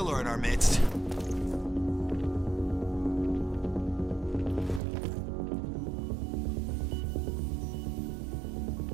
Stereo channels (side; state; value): left; drops out; at 4.8 s